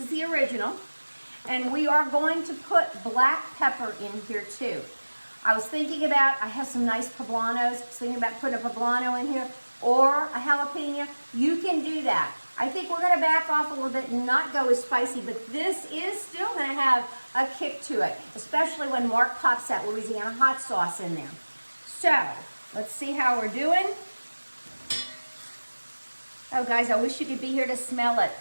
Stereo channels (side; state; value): both; inverted; correlation -1.00